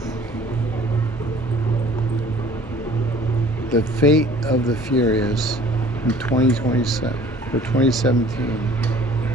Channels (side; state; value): both; normal; correlation 0.51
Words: The Fate of the Furious in 2027 for 2017.